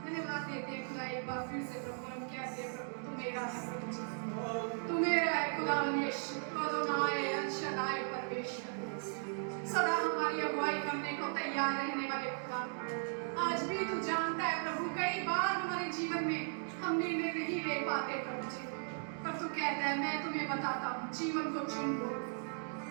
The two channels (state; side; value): silent; left; digital silence